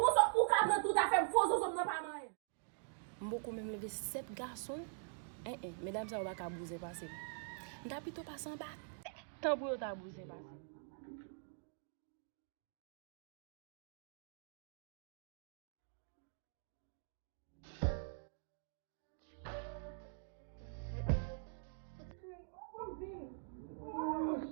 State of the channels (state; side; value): silent; left; digital silence